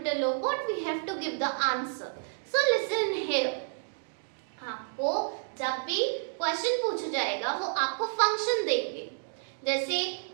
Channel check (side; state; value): left; silent; digital silence